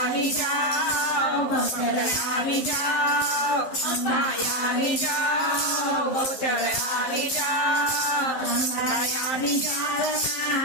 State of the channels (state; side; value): late; right; 11 ms